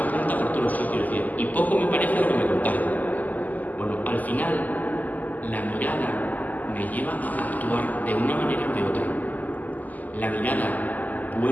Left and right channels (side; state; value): right; late; 0.081 ms